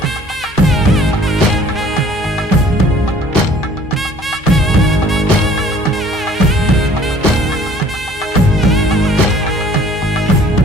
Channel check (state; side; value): normal; both; correlation 0.53